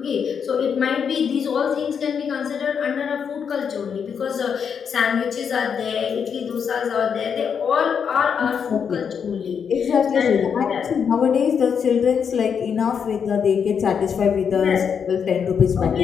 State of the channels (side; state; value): right; quieter; 7.0 dB